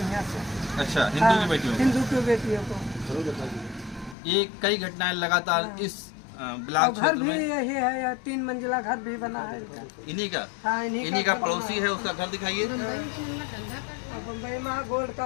हैं यहाँ से। अच्छा, हिंदू की बेटियों को? हिंदू की बेटियों को ये कई घटनाएं लगातार इस ब्लॉक घर क्षेत्र भी में। यही है, या 3 मंजिला घर भी बना है इनका। इन्हीं का? हाँ, इन्हीं का पड़ोसी है, उसका घर दिखाइए। बम्बई में गोल्ड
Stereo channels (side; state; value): right; drops out; at 4.2 s